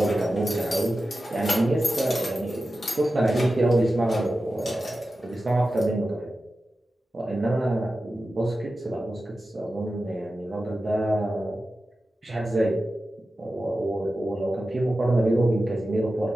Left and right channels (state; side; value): normal; both; correlation 0.93